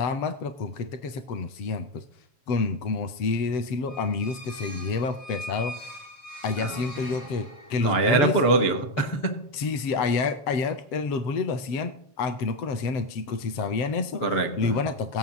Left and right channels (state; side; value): late; right; 7.4 ms